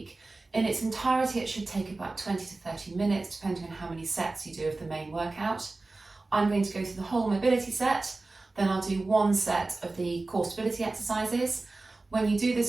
In its entirety, it should take about 20 to 30 minutes, depending on how many sets you do of the main workout. I'm going to go through the whole mobility set, then I'll do one set of the core stability exercises. When you do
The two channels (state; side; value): quieter; left; 3.3 dB